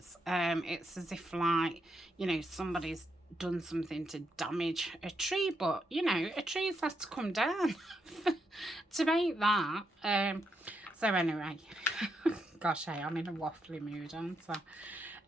It's as if, like, you know, somebody's done something to damage a tree, but, you know, a tree's has to come down to make that. So anyway, gosh, hey, I'm in a waffly mood, aren't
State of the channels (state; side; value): normal; both; correlation 0.81